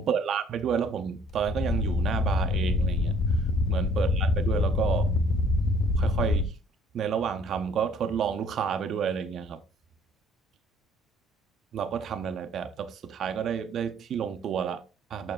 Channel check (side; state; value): both; normal; correlation 0.57